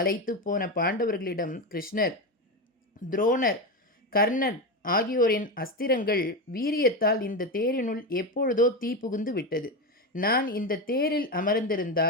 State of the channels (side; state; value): both; normal; correlation 0.16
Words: போன பாண்டவர்களிடம் கிருஷ்ணர், துரோணர், கர்ணர் ஆகியோரின் அஸ்திரங்கள் வீரியத்தால் இந்த தேரினுள் எப்பொழுதோ தீ புகுந்து விட்டது. நான் இந்த தேரில்